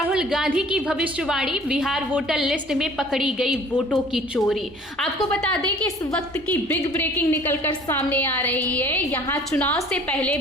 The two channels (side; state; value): both; normal; correlation 0.52